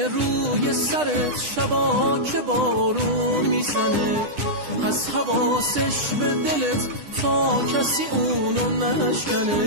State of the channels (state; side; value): late; left; 9.9 ms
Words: روی سرت شبا که بارون میزنه، پس حواسش به دلت تا کسی اونو